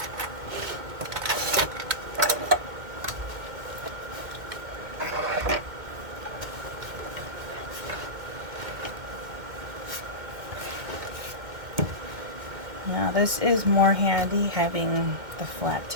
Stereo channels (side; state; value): left; late; 2.1 ms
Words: Now this is more handy having the flat